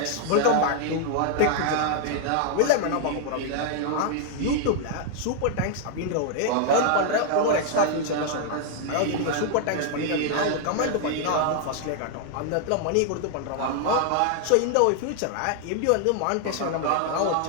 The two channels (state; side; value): different; both; correlation 0.00